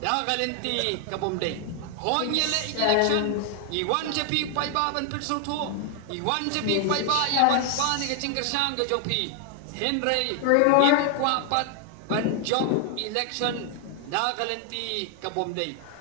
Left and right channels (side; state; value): both; different; correlation 0.00